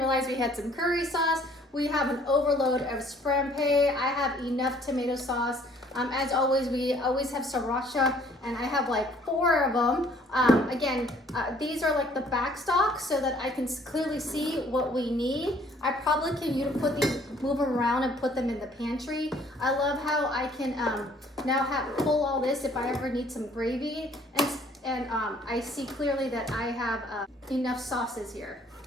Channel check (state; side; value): normal; both; correlation 0.59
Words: we had some curry sauce. We have an overload of scrampe. I have enough tomato sauce. As always, we always have sriracha, and I have like 4 of them. Again, these are like the back stock so that I can clearly see what we need. I probably can move them around and put them in the pantry. I love how I can now pull all this if I ever need some gravy, and I see clearly that I have enough sauces here.